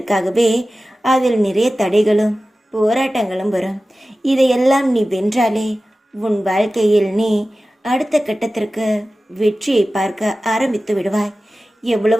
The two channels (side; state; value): both; normal; correlation 0.95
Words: அதில் நிறைய தடைகளும் போராட்டங்களும் வரும். இதையெல்லாம் நீ வென்றாலே உன் வாழ்க்கையில் நீ அடுத்த கட்டத்திற்கு வெற்றியை பார்க்க ஆரம்பித்து விடுவாய்.